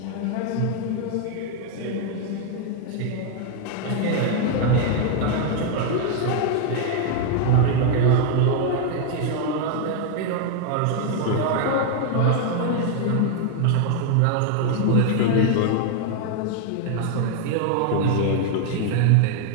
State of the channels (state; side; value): different; both; correlation 0.00